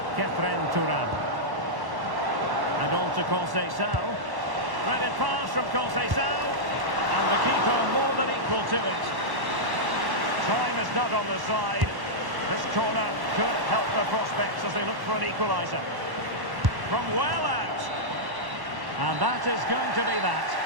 Kefren Turam. And on to Conceição. Threaded pass from Conceição. And the keeper more than equal to it. Time is not on the side. This corner could help the prospects as they look for an equaliser. From well out. And that is going to be that.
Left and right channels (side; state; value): left; late; 1.1 ms